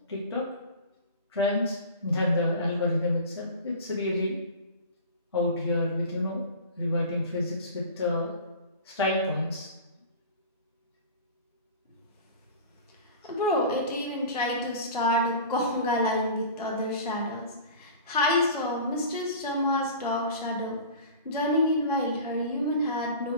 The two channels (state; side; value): inverted; both; correlation -0.37